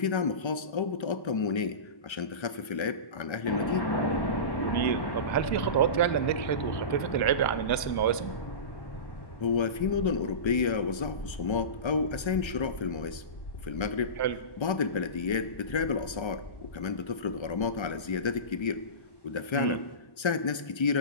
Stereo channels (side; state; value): right; late; 1.3 ms